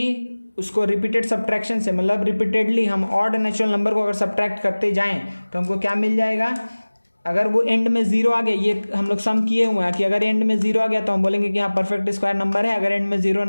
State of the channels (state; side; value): inverted; both; correlation -1.00